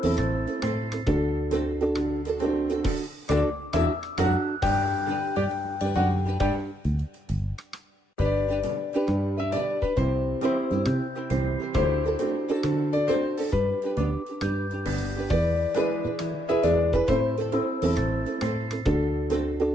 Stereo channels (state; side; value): normal; both; correlation 0.79